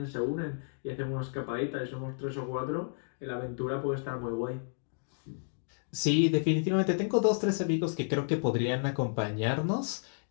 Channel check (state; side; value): silent; right; digital silence